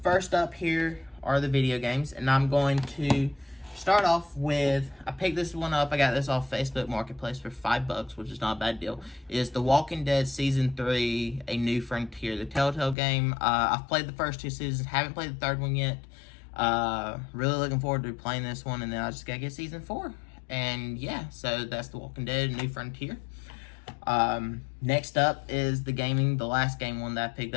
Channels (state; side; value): drops out; right; at 13.0 s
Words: up here are the video games, and I'm going to start off with, I picked this one up, I got this off Facebook Marketplace for $5, which is not a bad deal. It is The Walking Dead Season 3, A New Frontier, the Telltale game. I've played the first 2 seasons, haven't played the 3rd one yet. Really looking forward to playing this one, and then I just gotta get Season 4. And yeah, so that's The Walking Dead, A New Frontier. Next up is the last game one that I picked